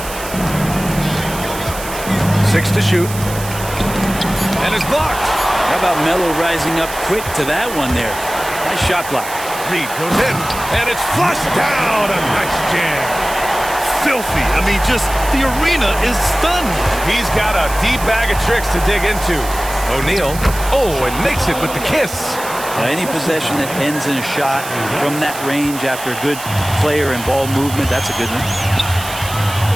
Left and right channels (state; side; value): noise; right; hiss, 11 dB below the sound